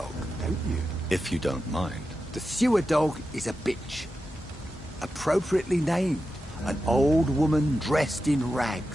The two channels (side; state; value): both; normal; correlation 0.91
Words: don't you? If you don't mind. The sewer dog is a bitch. Appropriately named. An old woman dressed in